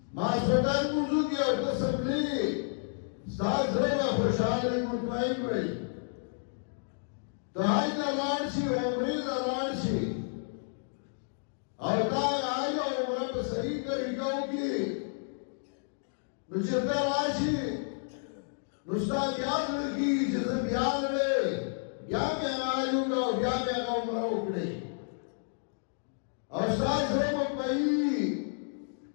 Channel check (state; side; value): silent; right; digital silence